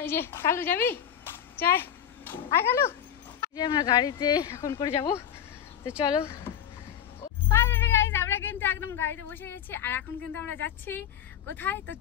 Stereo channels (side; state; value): right; quieter; 9.5 dB